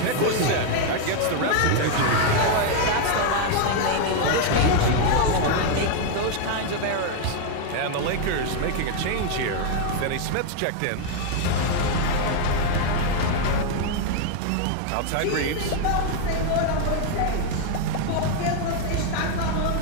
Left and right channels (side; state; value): both; different; correlation 0.00